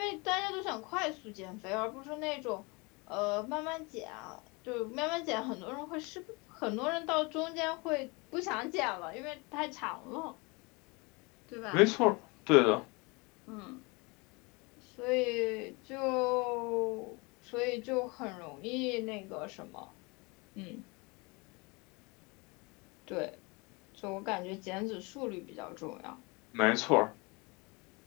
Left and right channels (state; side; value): quieter; right; 27.7 dB